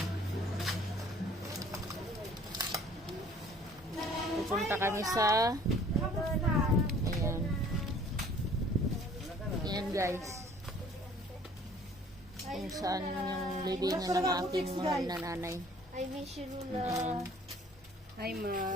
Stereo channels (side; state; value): both; normal; correlation 0.54